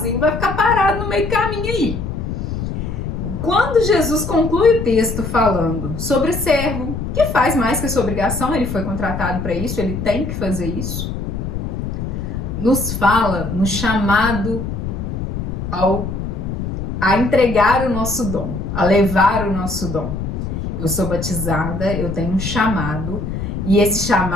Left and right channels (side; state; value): left; noise; rumble, 4 dB below the sound